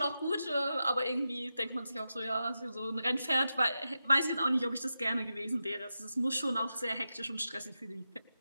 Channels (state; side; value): inverted; both; correlation -0.90